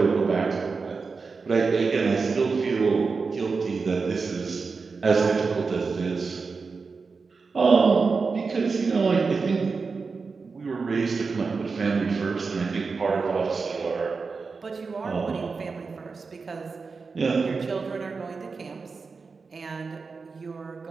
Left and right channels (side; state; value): left; quieter; 4.7 dB